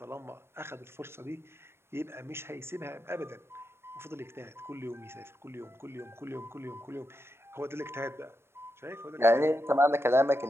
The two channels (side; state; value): left; late; 0.12 ms